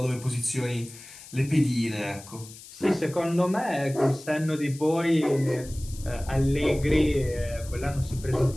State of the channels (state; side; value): noise; left; hiss, 17 dB below the sound